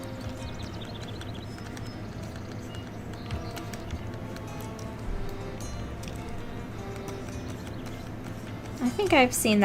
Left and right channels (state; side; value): identical; both; correlation 1.00